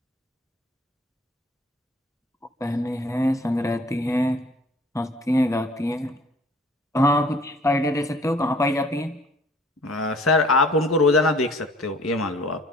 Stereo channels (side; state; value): both; normal; correlation 0.54